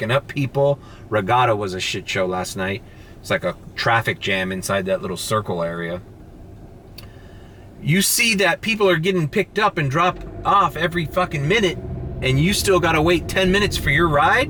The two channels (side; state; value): both; identical; correlation 1.00